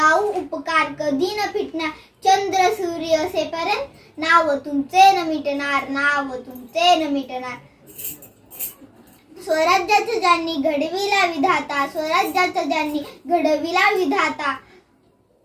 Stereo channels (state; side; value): identical; both; correlation 1.00